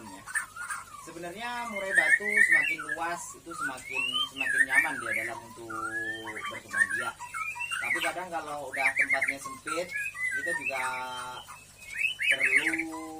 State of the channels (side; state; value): both; identical; correlation 1.00